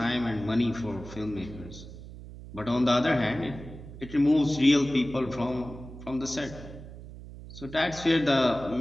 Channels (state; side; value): noise; right; hum, 14 dB below the sound